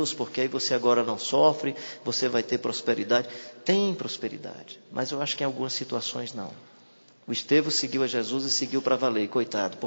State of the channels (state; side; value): inverted; both; correlation -1.00